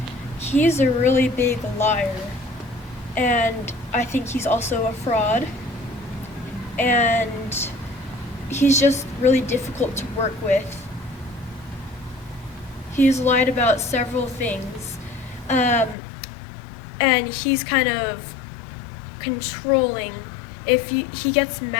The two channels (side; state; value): right; drops out; at 16.0 s